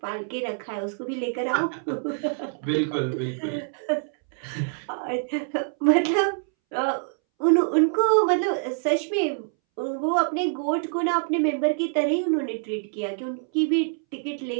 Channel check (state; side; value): silent; left; 61 dB below the other